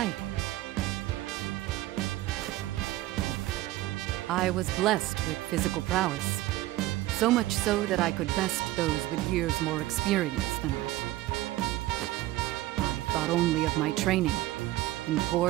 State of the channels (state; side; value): quieter; left; 16.3 dB